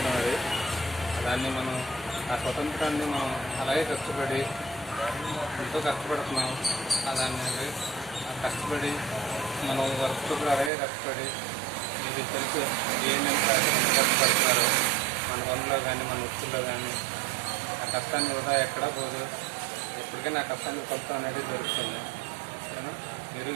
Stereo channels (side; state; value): left; drops out; at 10.7 s